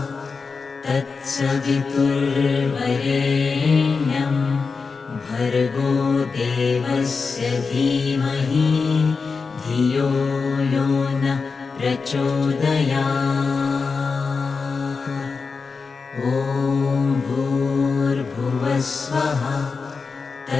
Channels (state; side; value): quieter; right; 4.8 dB